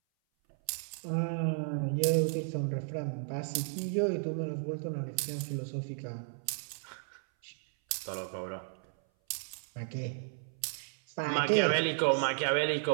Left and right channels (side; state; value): left; silent; 55 dB below the other